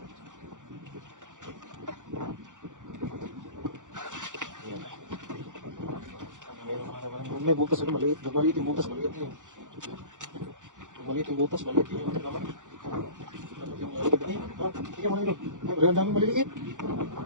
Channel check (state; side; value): late; left; 0.86 ms